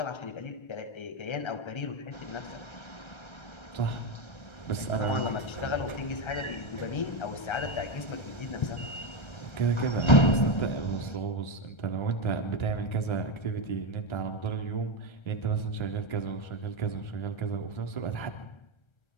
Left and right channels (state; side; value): late; right; 1.3 ms